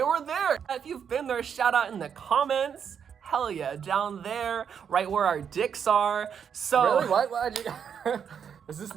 were there. If you've been there, shout out in the comments. Hell yeah, down there, right where our dicks are. So Really? Why'd you... Is this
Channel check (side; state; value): left; quieter; 7.6 dB